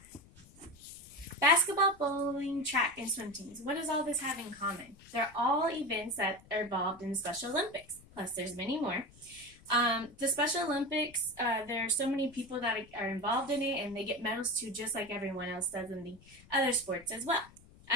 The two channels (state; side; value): noise; left; rumble, 24 dB below the sound